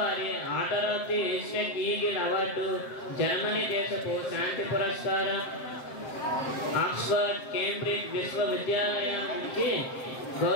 order of the Easter eagle award, Germany దేశపు శాంతి పురస్కారం, ఆక్స్ఫర్డ్, కేంబ్రిడ్జ్ విశ్వవిద్యాలయం నుంచి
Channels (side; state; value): right; late; 7.7 ms